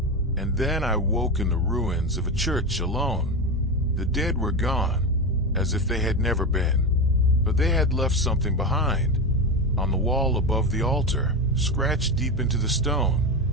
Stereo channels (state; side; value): normal; both; correlation 0.18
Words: And then I woke in the ruins of a church alone. The dead were gone, as if they had never been. But they had left something behind. On the wall above the altar, scratched deep into the